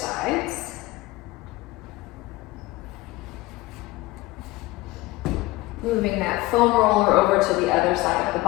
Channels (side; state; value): right; quieter; 19.9 dB